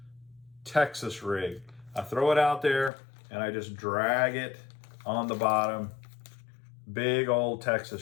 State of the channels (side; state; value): right; drops out; at 2.9 s